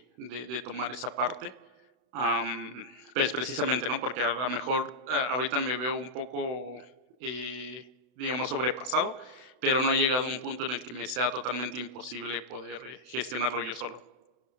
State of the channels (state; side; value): late; left; 32 ms